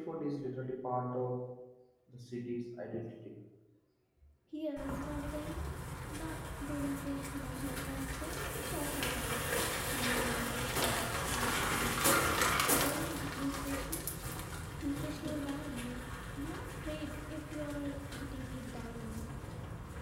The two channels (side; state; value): both; identical; correlation 1.00